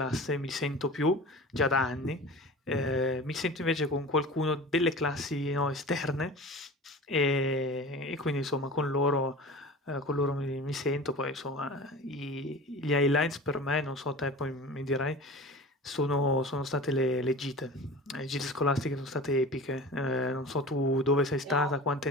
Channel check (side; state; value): both; normal; correlation 0.36